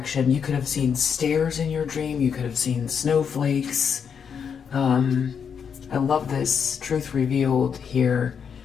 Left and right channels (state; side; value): quieter; right; 7.0 dB